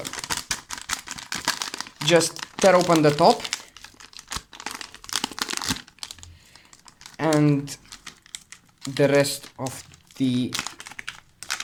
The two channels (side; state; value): both; identical; correlation 1.00